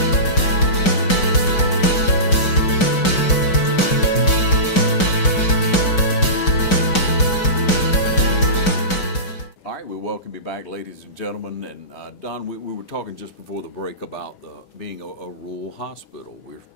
Welcome you back, ladies and gentlemen. And Don, we were talking just before the break about being a rural hospital. We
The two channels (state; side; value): late; right; 5.3 ms